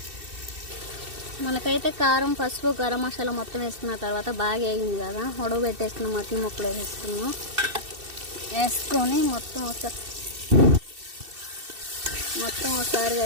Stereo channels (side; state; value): left; late; 2.7 ms